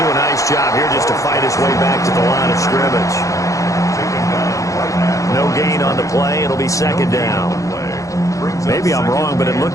do a nice job here just to fight his way back to the line of scrimmage. No gain on the play. It'll be 2nd down. Maybe I'm wrong, but it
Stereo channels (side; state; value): right; late; 0.16 ms